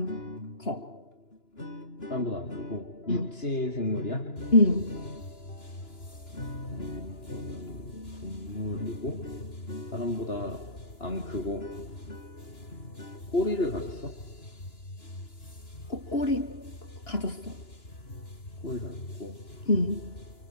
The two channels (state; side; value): late; right; 2.9 ms